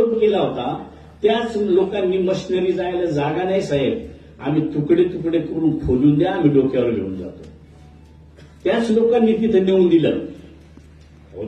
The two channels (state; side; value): identical; both; correlation 1.00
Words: केला होता त्याच लोकांनी मशिनरी जायला जागा नाही साहेब, आम्ही तुकडे तुकडे करून खोलून द्या, आम्ही डोक्यावर घेऊन जातो. त्याच लोकांनी तिथं नेऊन दिलं.